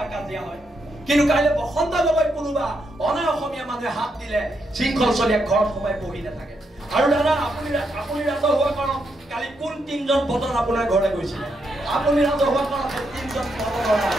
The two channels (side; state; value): both; normal; correlation 0.80